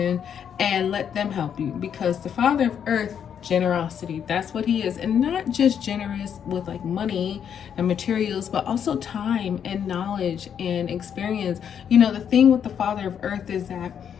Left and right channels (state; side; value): quieter; right; 8.3 dB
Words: and let them help you, because the Father of Earth, generosity, that's what he is. And not just generous with like money and materials, but also time and knowledge and experience. The thing with the Father of Earth is that